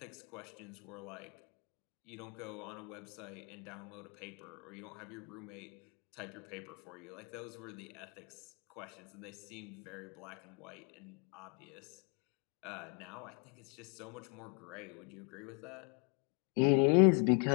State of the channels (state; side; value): quieter; right; 36.4 dB